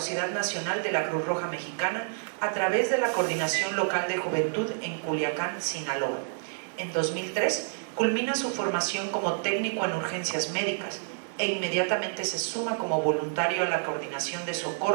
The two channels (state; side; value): silent; left; 59 dB below the other